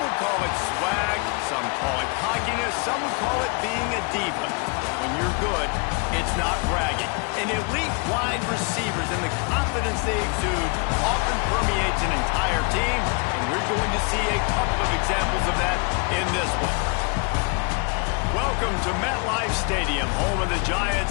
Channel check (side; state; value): right; quieter; 33.9 dB